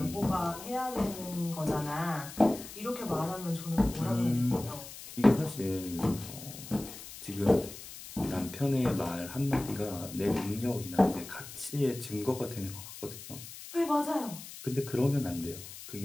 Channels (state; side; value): noise; left; hiss, 13 dB below the sound